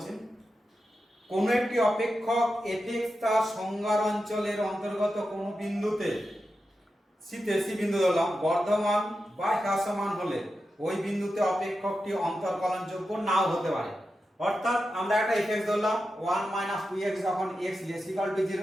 কোন একটি অপেক্ষক fx তার সংজ্ঞার অঞ্চলের অন্তর্গত কোন বিন্দুতে সি বিন্দু ধরলাম বর্ধমান বা হ্রাসমান হলে ওই বিন্দুতে অপেক্ষকটি অন্তর্কলনযোগ্য নাও হতে পারে। অর্থাৎ আমরা একটা fx ধরলাম 1 - 2x যখন x > 0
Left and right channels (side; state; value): both; normal; correlation 0.90